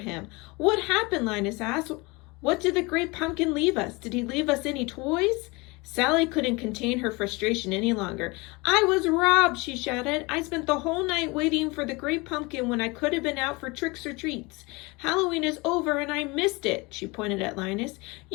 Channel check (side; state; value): right; quieter; 25.4 dB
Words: "What happened?" Linus asked. "What did the great pumpkin leave us? Did he leave us any toys?" Sally couldn't contain her frustration any longer. "I was robbed," she shouted. "I spent the whole night waiting for the great pumpkin when I could have been out for tricks or treats. Halloween is over and I missed it." She pointed at Linus.